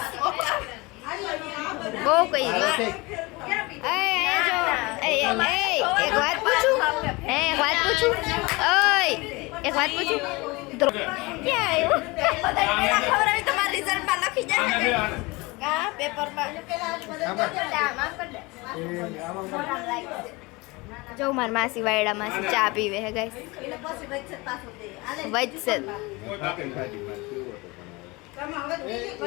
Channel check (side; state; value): right; quieter; 24.2 dB